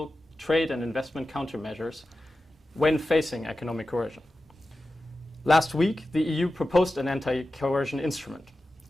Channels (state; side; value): normal; both; correlation 0.93